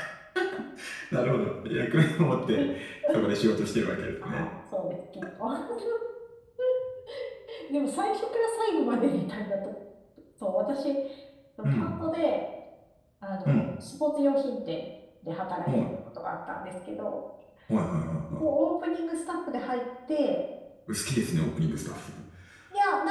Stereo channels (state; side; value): identical; both; correlation 1.00